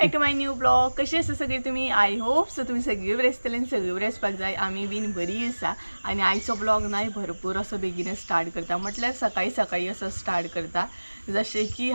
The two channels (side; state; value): both; inverted; correlation -1.00